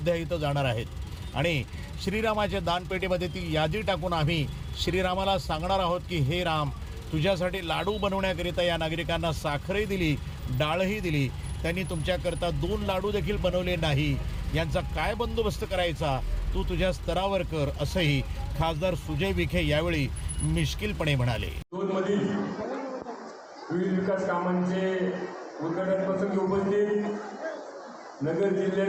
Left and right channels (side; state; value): both; identical; correlation 1.00